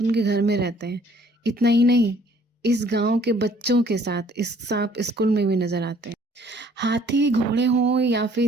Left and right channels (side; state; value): both; normal; correlation 0.59